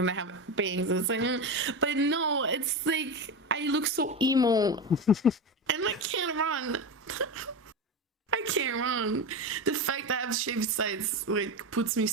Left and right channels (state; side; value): normal; both; correlation 0.19